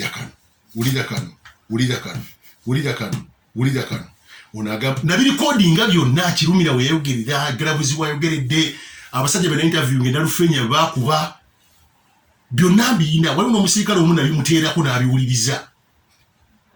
wulira kano onagamba nabirikodinga byonna kirumira weyayogerera galabuzi wayogeredde abasajja bena interview ngenda lufenya bakuba byonna mbiyina. Waliwo n'omusirikale omu nabimuteerako n'abiwuliriza.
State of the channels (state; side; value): identical; both; correlation 1.00